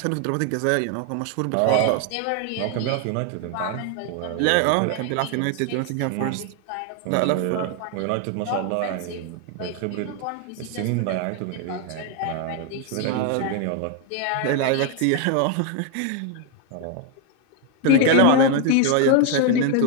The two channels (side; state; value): both; different; correlation 0.01